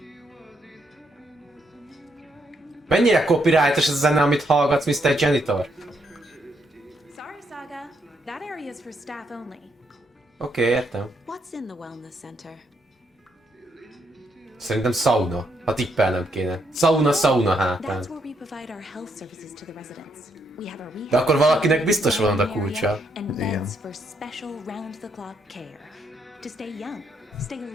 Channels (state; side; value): normal; both; correlation 0.76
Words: Mennyire copyrightos ez a zene, amit hallgatsz, Mr. Janitor? Sorry, Saga. That area is for staff only. Oké, értem. What's in the wellness center? Szerintem sauna. Ha tippelnem kéne. Sauna hátán. That's where we provide our health services to the residents. We have a rehab De akkor valakinek center, biztos van oda area, kulcsa. and Igen. beds for special round-the-clock care. To stay young, stay